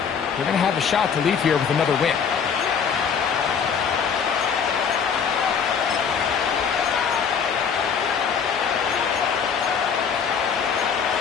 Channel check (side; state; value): right; quieter; 6.8 dB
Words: they're going to have a shot to leave here with another win.